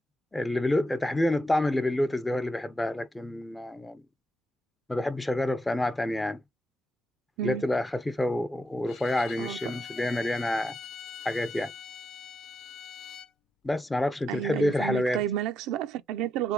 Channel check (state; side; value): normal; both; correlation 0.83